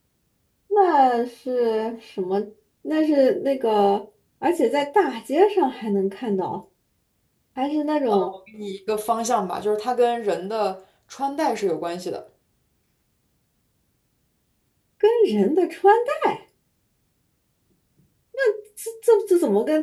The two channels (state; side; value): identical; both; correlation 1.00